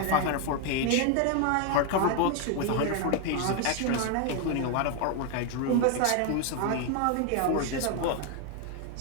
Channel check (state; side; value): different; both; correlation 0.01